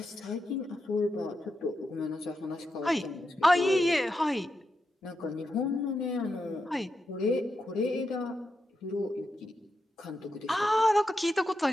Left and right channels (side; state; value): both; normal; correlation 0.86